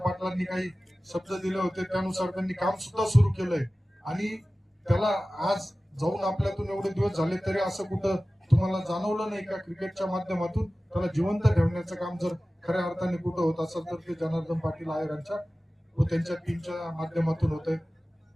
काही शब्द दिले होते, त्यानुसार त्यांनी काम सुद्धा सुरू केलंय आणि त्याला आज जाऊन आपल्यातून एवढे दिवस झाले तरी असं कुठं तुम्हाला जाणवलं नाही का क्रिकेटच्या माध्यमातून त्याला जिवंत ठेवण्याचं काम जर खऱ्या अर्थाने कुठं होत असेल तर ते जनार्दन पाटील आयरांच्या व त्यांच्या टीमच्या माध्यमातून होत आहे.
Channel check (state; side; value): normal; both; correlation 0.96